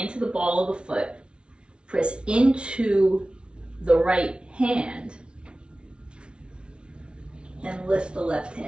the ball of the foot. Press into the right hand and lift the left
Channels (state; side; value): late; left; 0.057 ms